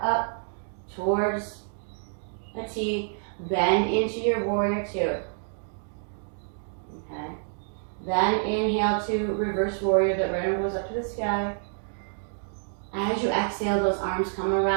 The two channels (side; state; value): left; silent; digital silence